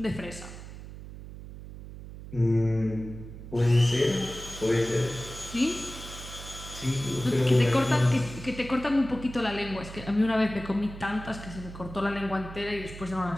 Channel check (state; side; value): noise; right; hum, 13 dB below the sound